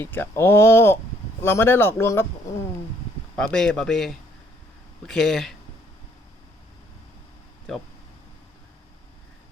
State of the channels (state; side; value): normal; both; correlation 0.65